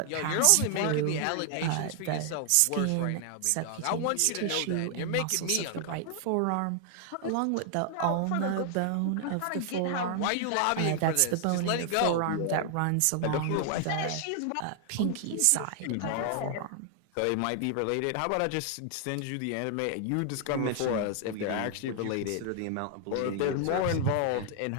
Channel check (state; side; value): different; both; correlation 0.00